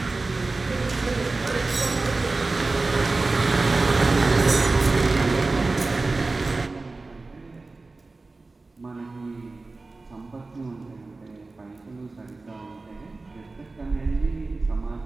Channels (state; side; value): quieter; left; 3.5 dB